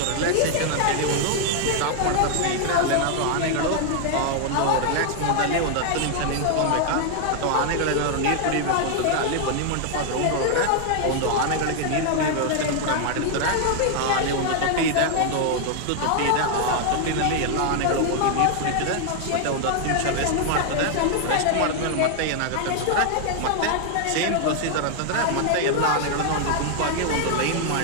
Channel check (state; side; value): different; both; correlation 0.00